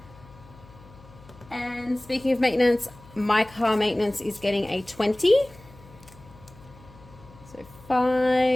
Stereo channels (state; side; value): noise; left; hum, 22 dB below the sound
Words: And speaking of maintenance, my car maintenance is getting a 20. So